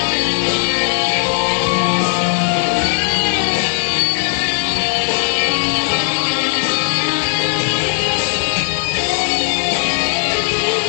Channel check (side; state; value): right; silent; 65 dB below the other